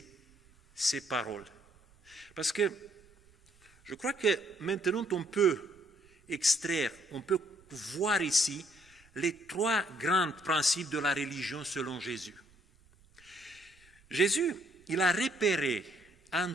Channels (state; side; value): noise; right; rumble, 29 dB below the sound